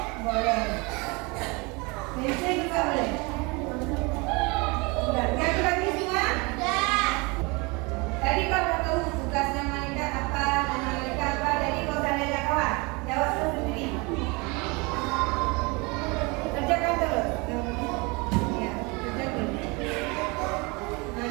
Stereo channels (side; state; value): left; quieter; 27.6 dB